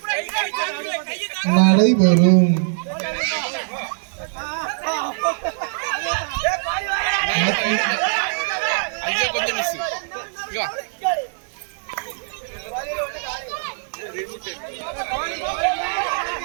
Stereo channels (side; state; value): left; silent; digital silence